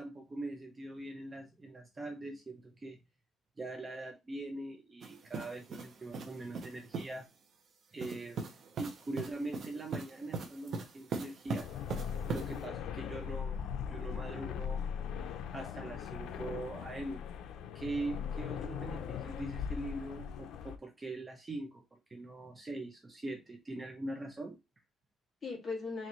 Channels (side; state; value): both; normal; correlation 0.70